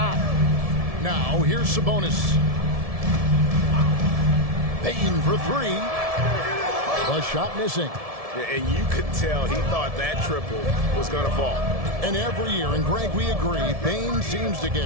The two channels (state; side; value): late; left; 1.7 ms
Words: Now, here's Sabonis. Payton for 3. The shot missing. And you could tell he thought that triple was going to fall. And every year, and Greg, we agree, Bane seems to